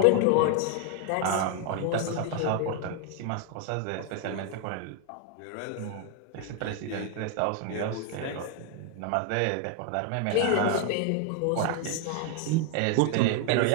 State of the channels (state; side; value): different; both; correlation 0.00